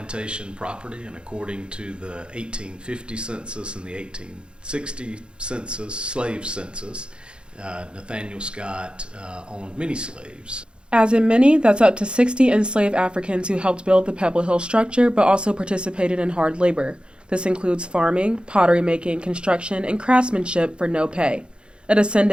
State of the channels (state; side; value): late; left; 0.054 ms